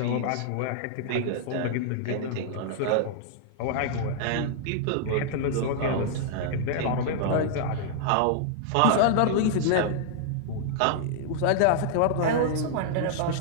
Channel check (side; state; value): both; different; correlation -0.01